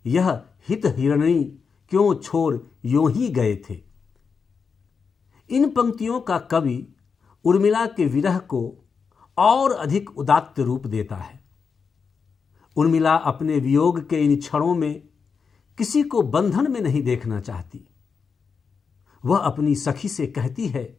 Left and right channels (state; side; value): quieter; right; 5.6 dB